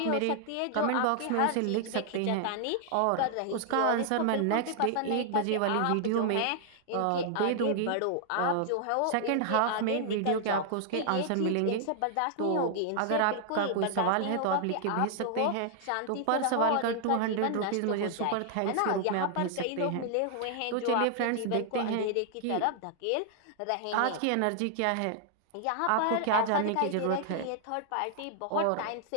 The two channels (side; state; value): both; different; correlation -0.01